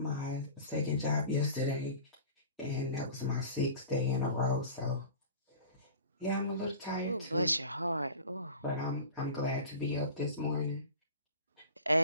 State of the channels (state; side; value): inverted; both; correlation -0.39